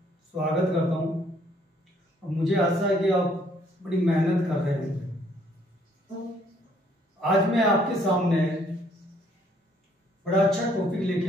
स्वागत करता हूँ। और मुझे आशा है कि आप बड़ी मेहनत कर रहे हैं। आज मैं आपके सामने बड़ा अच्छा टॉपिक लेके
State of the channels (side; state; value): both; normal; correlation 0.65